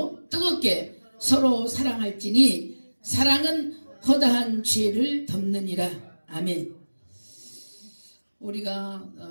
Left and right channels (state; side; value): inverted; both; correlation -1.00